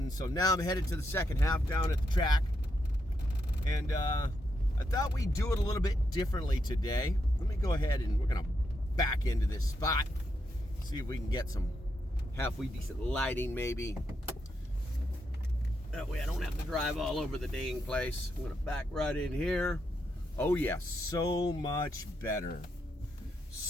so now I'm headed to the second half down at the track. And I thought we'd do it a little bit differently today. Let me go ahead and we're going to back into this spot. See if we can get some halfway decent lighting maybe. That way I don't have to drive all over the dang place. I'm gonna back right in here. Oh yeah, so much better.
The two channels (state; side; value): normal; both; correlation 0.81